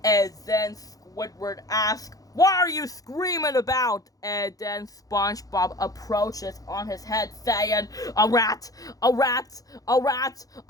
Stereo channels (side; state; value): right; late; 0.17 ms